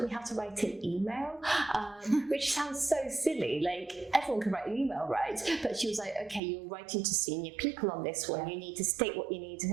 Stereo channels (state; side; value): drops out; left; at 6.4 s